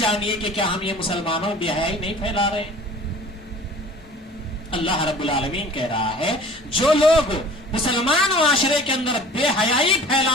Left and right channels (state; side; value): normal; both; correlation 0.46